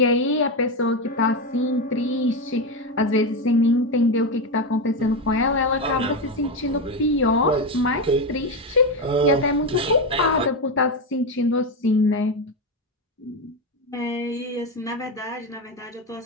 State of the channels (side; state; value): both; normal; correlation 0.12